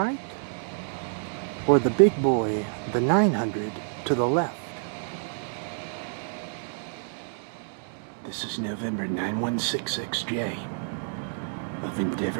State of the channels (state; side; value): silent; left; 59 dB below the other